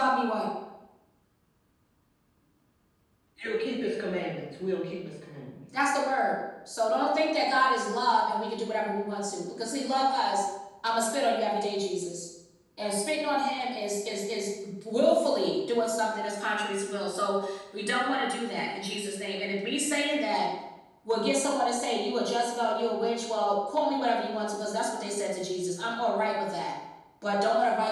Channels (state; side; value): identical; both; correlation 1.00